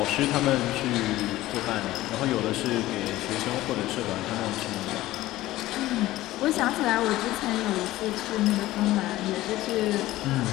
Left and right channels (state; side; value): quieter; right; 16.4 dB